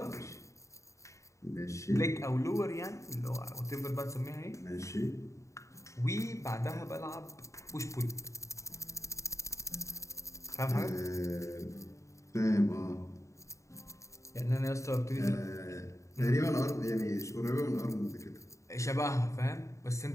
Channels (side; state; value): right; late; 0.15 ms